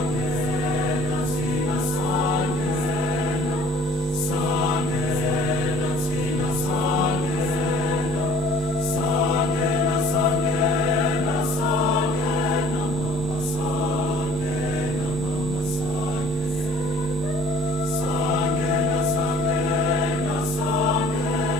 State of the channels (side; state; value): both; normal; correlation 0.53